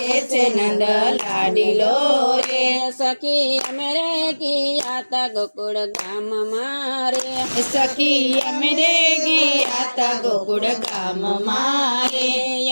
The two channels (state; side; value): inverted; both; correlation -1.00